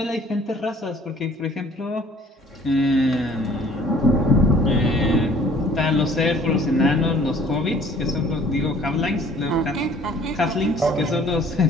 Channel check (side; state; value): both; normal; correlation 0.54